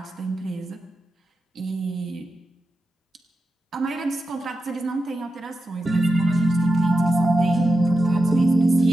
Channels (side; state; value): both; normal; correlation 0.90